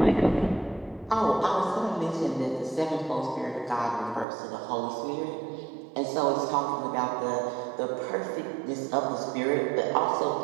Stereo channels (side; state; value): left; drops out; at 4.2 s